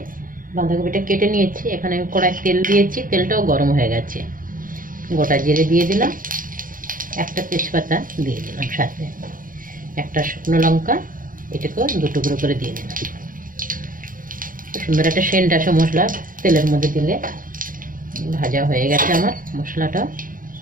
বাঁধাকপিটা কেটে নিয়েছি। এখানে আমি কড়াই তেল দিয়েছি, তেলটাও গরম হয়ে গেছে। গোটা জিরে দিয়ে দিলাম, একটা তেজপাতা দিয়ে দিলাম, সাথে একটা শুকনো লঙ্কা, এটাকেও দু টুকরো করে দিয়ে দিলাম। সুন্দর একটা সেন্ট আসে মশলা তেলের মধ্যে দিলে। ভাজা হয়ে গেছে আমার মশলাটা।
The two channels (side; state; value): left; late; 0.40 ms